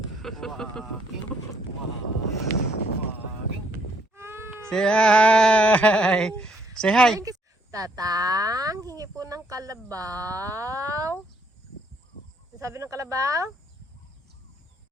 hi! Say hi! Tatang, hingi po ng kalabaw. Ano sabi ng kalabaw?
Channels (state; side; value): normal; both; correlation 0.68